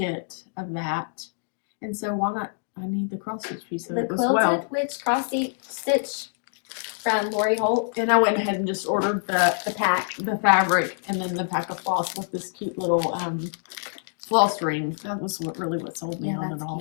of that, and so why not? I need the cross stitch piece of The it as Quilted well. Witch cross stitch from Lori Holt. And I went ahead and just ordered the pack, the fabric, and then the pack of floss with this cute little floss ring. That was what sold me on it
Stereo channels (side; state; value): right; silent; digital silence